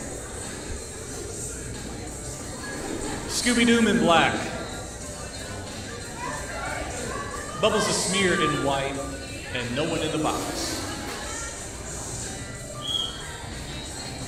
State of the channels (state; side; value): identical; both; correlation 1.00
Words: Scooby-Doo in black. Bubbles the Smear in white, and no one in the box.